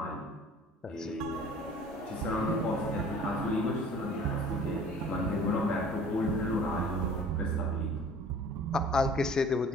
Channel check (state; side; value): normal; both; correlation 0.48